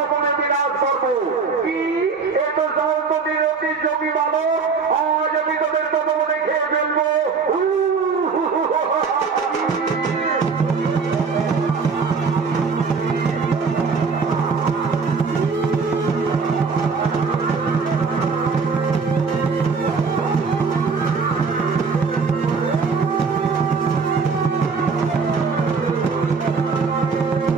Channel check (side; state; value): left; quieter; 5.0 dB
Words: বিনাশ করবো। কি এত সহজতির অতি জমি বালক, আজ আমি তোদের তপবনে খেয়ে ফেলবো।